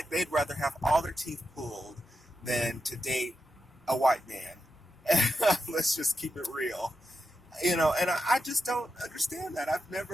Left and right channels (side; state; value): both; normal; correlation 0.88